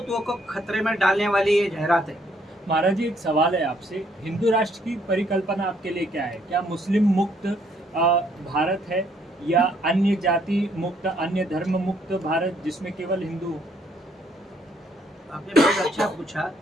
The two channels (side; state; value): both; normal; correlation 0.68